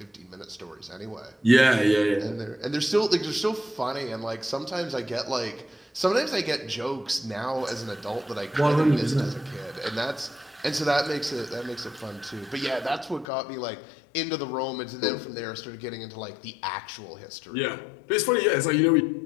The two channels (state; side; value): drops out; right; at 13.2 s